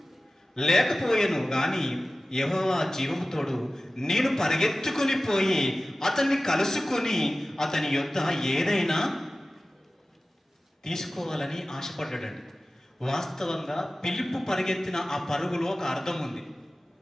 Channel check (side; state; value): both; normal; correlation 0.96